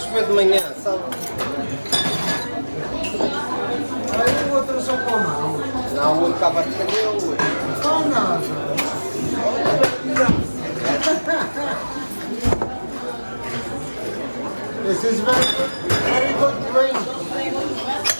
de manhã, sabe? Aí o outro só com a mão. Não, o outro estava a defender o outro. Com nada. This is very good drink.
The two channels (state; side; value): inverted; both; correlation -1.00